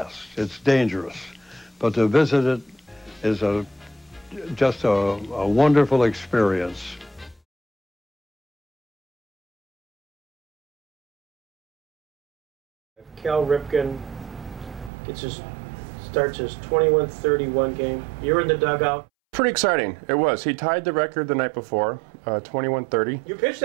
It's dangerous. But to visit it is just a wonderful experience. Cal Ripken starts his 21-31 game. You're in the dugout. Pretty exciting. It was. He tied the record the night before, 21-30. You pitched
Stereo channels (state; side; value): drops out; left; at 14.9 s